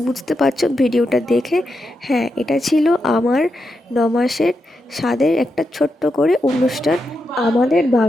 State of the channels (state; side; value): normal; both; correlation 0.86